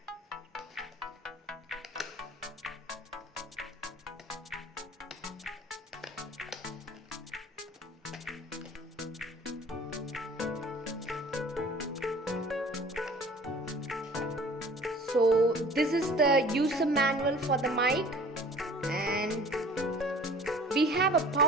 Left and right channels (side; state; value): both; normal; correlation 0.47